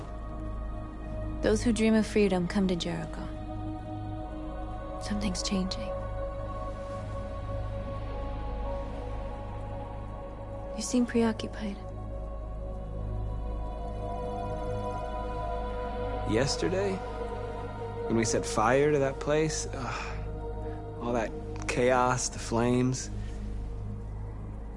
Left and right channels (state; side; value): identical; both; correlation 1.00